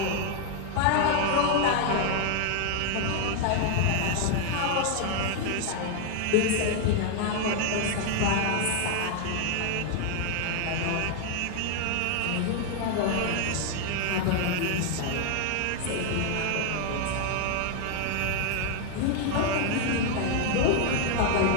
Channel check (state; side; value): different; both; correlation 0.00